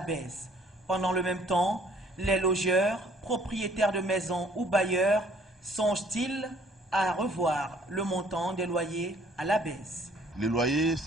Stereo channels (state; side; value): normal; both; correlation 0.60